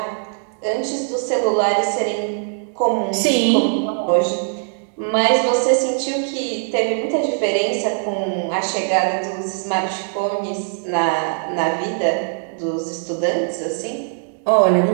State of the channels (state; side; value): silent; left; digital silence